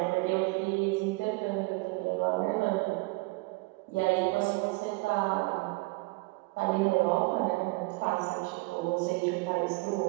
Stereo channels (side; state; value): left; quieter; 25.6 dB